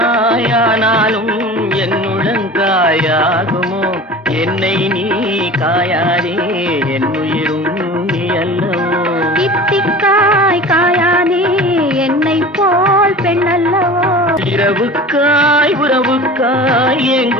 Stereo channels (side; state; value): both; normal; correlation 0.37